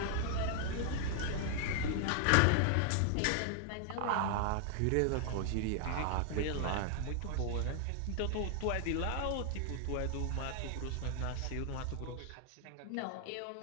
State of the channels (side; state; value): both; different; correlation 0.00